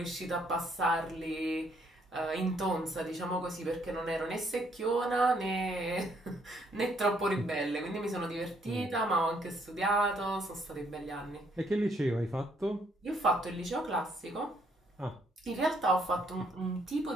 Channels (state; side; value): normal; both; correlation 0.69